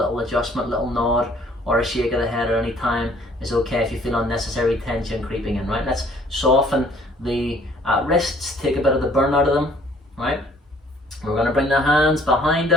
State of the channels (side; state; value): both; normal; correlation 0.58